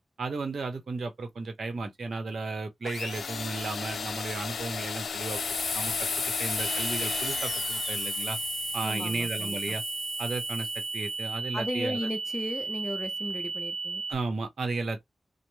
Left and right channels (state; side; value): normal; both; correlation 0.86